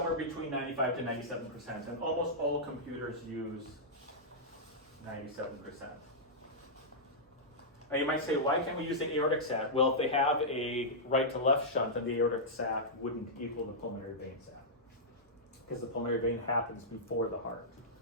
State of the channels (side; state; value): both; normal; correlation -0.11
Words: between 95 to 97%, and almost all computers use 97%. Now you might say, why can't we use the aortic sat? Well, if they have a right to left shunt, then the aortic sat wouldn't equal the pulmonary vein sat, because the pulmonary vein happens before the heart.